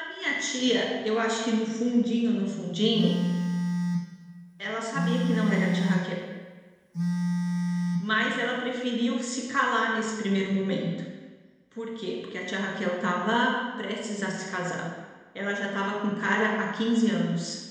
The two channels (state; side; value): identical; both; correlation 1.00